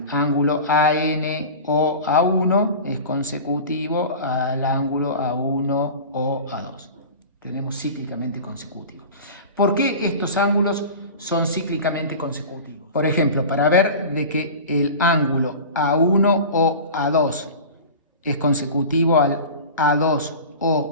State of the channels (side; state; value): both; inverted; correlation -0.34